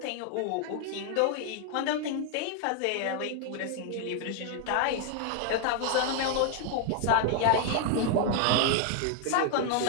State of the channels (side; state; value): both; different; correlation 0.00